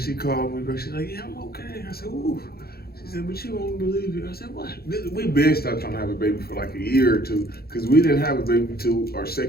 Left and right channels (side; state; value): right; late; 0.45 ms